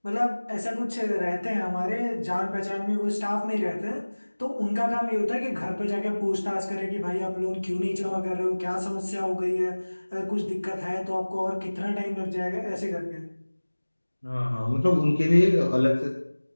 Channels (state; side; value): inverted; both; correlation -1.00